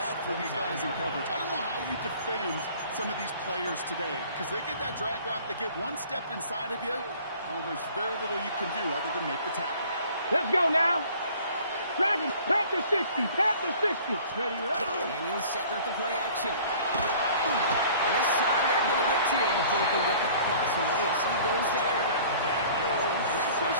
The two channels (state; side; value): inverted; both; correlation -0.50